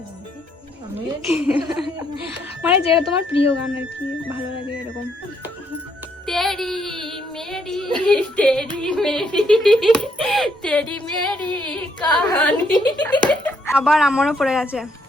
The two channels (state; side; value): normal; both; correlation 0.71